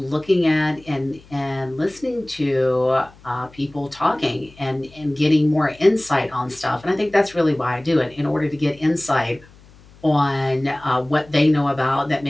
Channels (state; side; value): noise; left; hum, 25 dB below the sound